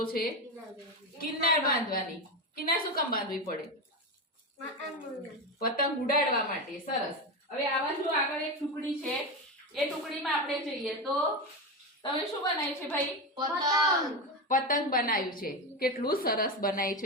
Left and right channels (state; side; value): normal; both; correlation 0.16